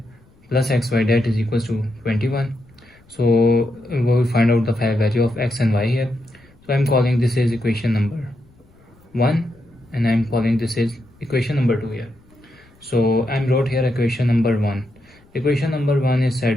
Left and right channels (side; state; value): left; noise; rumble, 29 dB below the sound